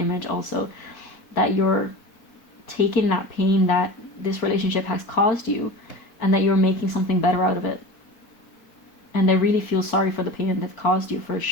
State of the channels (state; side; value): late; right; 4.1 ms